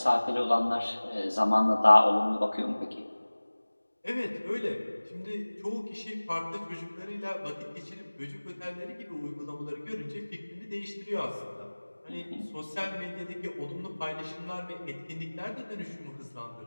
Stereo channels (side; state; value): both; inverted; correlation -1.00